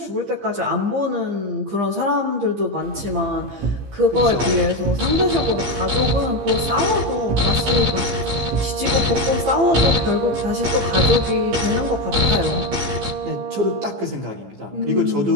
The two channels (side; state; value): left; late; 15 ms